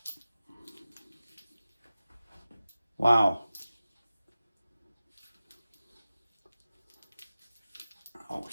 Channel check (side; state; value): both; inverted; correlation -0.96